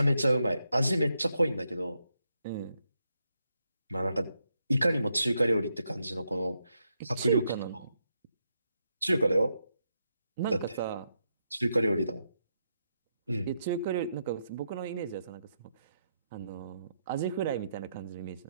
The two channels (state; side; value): inverted; both; correlation -0.81